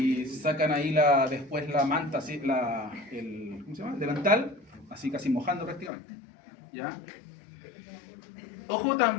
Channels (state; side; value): drops out; right; at 5.9 s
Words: sacan ahí después la manta, así, ¿cómo se llama? El delantal, así casi mojando prácticamente. ¿Ya? Ojo